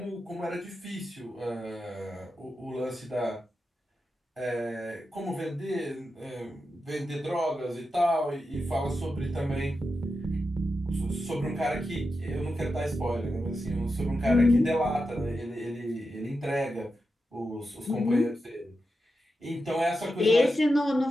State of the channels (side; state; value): both; normal; correlation 0.89